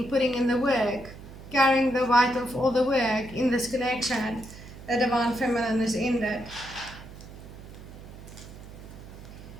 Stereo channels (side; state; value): right; noise; hum, 16 dB below the sound